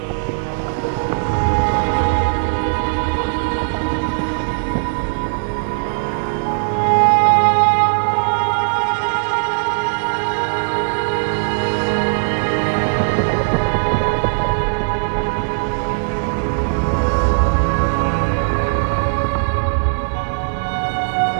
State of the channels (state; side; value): silent; left; digital silence